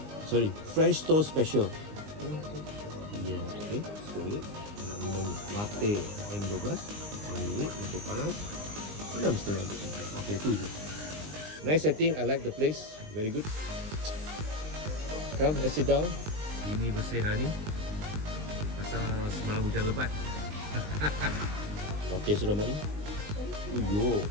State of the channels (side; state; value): left; late; 20 ms